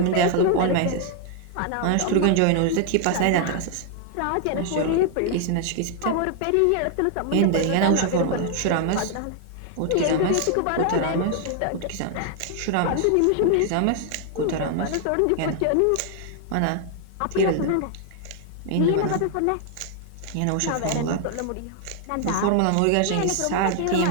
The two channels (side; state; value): both; different; correlation 0.00